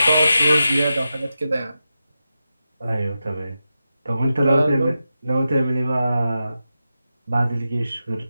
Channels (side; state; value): both; inverted; correlation -0.90